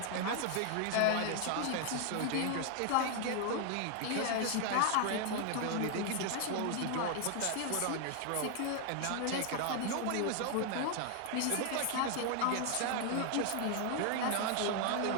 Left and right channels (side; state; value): both; different; correlation 0.00